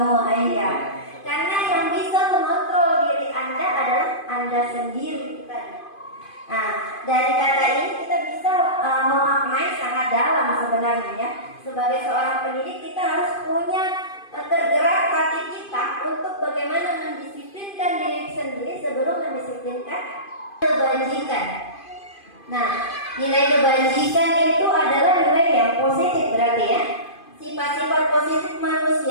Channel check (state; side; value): late; right; 2.5 ms